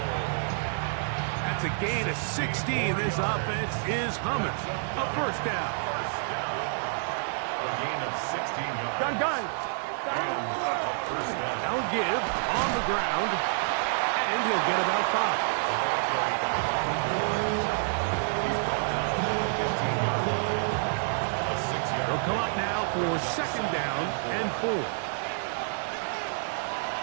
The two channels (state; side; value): silent; left; digital silence